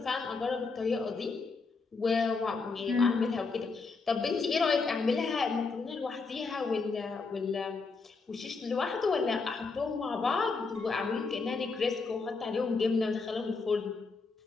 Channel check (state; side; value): quieter; right; 4.3 dB